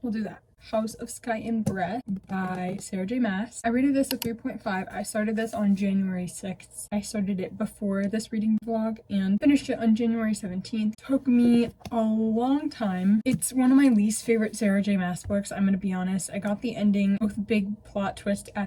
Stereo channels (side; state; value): both; identical; correlation 1.00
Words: We'll do that. House of Sky and Breath by Sarah J Maas. I rated this a 3.5. I started this on January 6th. I started it before this reading vlog and finished it on January 17th. Took me a long time. It's one of my least favorite Sarah J Maas books, I'm gonna be honest. I got the ending with big plot twist